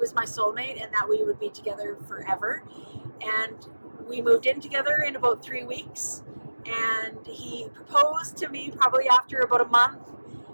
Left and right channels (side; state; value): both; inverted; correlation -1.00